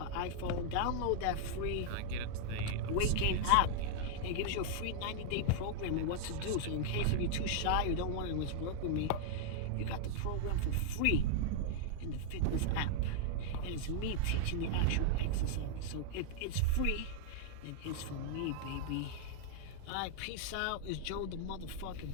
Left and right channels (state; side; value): different; both; correlation -0.01